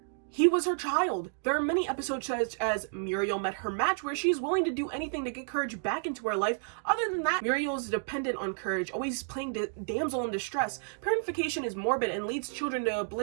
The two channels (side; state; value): left; silent; 57 dB below the other